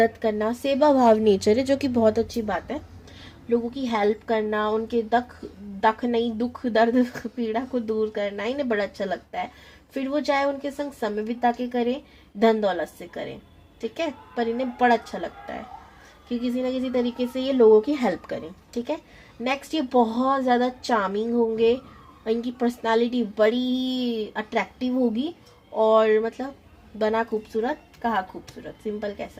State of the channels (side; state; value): both; identical; correlation 1.00